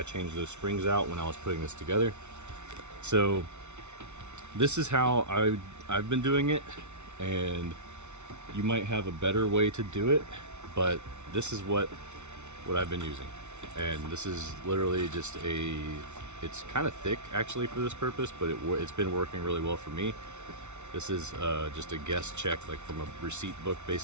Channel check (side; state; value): left; late; 0.82 ms